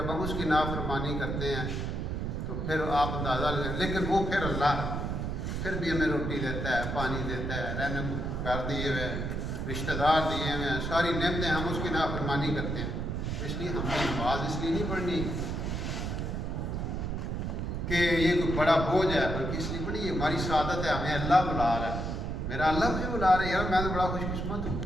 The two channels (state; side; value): noise; right; rumble, 2 dB below the sound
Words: ہم اس کی نافرمانی کرتے ہیں تو پھر آپ اندازہ لیں. لیکن وہ پھر اللہ ہے, پھر بھی ہمیں روٹی دیتا ہے, پانی دیتا ہے, رہنے کو گھر دیے ہوئے ہیں, رشتہ دار دیے ہوئے ہیں, ساری نعمتیں, ہم اس کی نافرمانی کرتے ہیں. اس لیے ہم نے نماز اس لیے نہیں پڑھنی کہ یہ کوئی بڑا بوجھ ہے, بلکہ اس لیے پڑھی یہ ہماری سعادت ہے, ہمیں اللہ بلا رہا ہے. میرا اللہ مجھے بلا رہا ہے, یار میں تو بڑا خوش قسمت ہوں